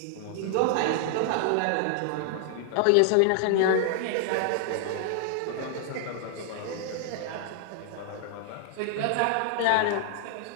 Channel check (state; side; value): different; both; correlation 0.00